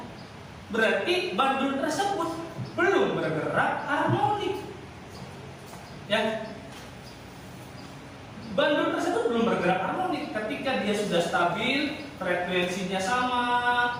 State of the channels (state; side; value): identical; both; correlation 1.00